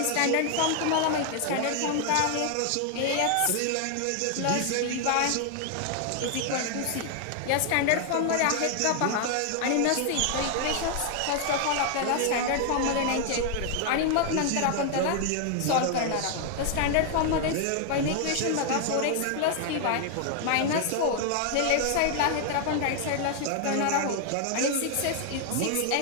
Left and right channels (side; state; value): both; different; correlation 0.00